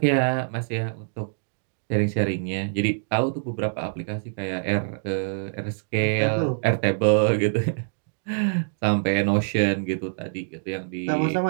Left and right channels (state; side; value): silent; left; digital silence